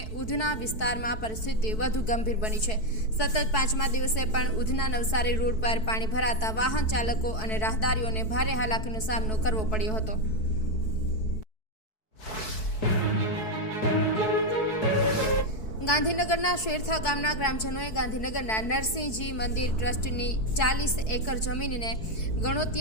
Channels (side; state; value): right; late; 4.6 ms